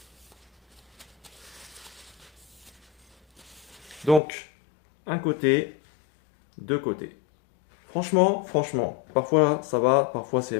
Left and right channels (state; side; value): drops out; right; at 4.2 s